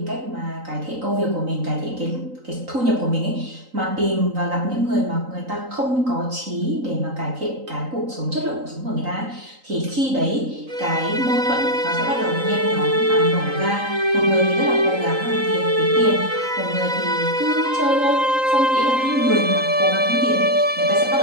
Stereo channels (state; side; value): late; left; 3.9 ms